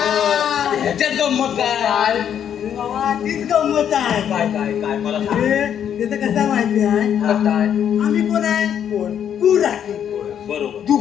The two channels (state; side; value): quieter; right; 9.1 dB